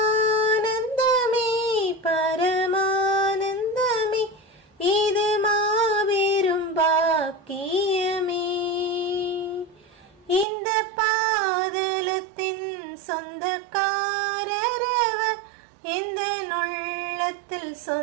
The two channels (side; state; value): left; drops out; at 10.5 s